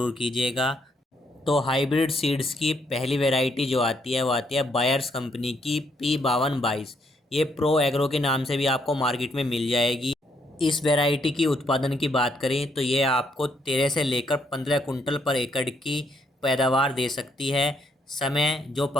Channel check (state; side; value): normal; both; correlation 0.73